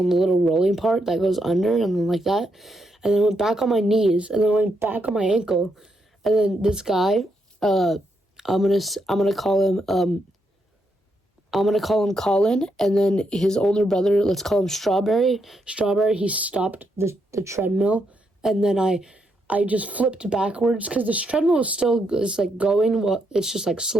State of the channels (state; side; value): normal; both; correlation 0.79